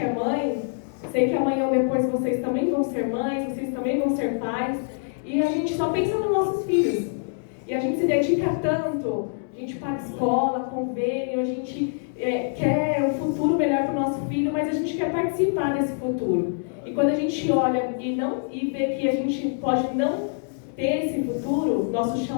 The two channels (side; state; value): right; silent; digital silence